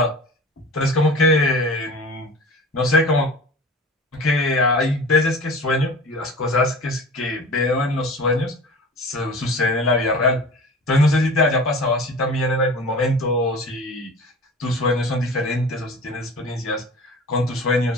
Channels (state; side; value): normal; both; correlation 0.38